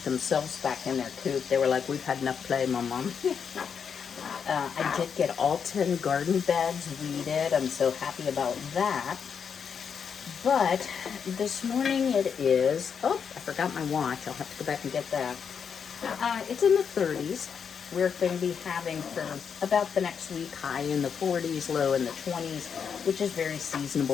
themselves back in their coop. They were like, we've had enough play, Mom. I did get all 10 garden beds weeded. I'm so happy about that. But this morning it is, I forgot my watch. I'll have to go back and get that. It's in the 30s. We're going to be having for about the next week high in the 40s, low in the 20s, which is very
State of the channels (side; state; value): right; quieter; 6.9 dB